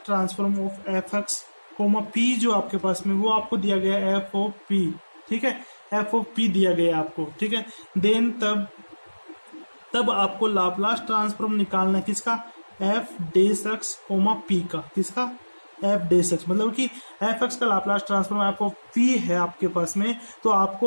transform of F X comma P, जो आपके पास में वो आपको दिया गया है एफ ऑफ पी। ठीक है, एफ ऑफ पी दिया गया है आपको। ठीक है, देन तब आपको लाप्लास ट्रांसफॉर्म निकालना है किसका? एफ डेस एक्स कोमा पी का। किसका? एफ डेस एक्स, मतलब कि एफ एक्स का Laplace transform F of P है आपके पास में, तो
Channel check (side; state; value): both; inverted; correlation -1.00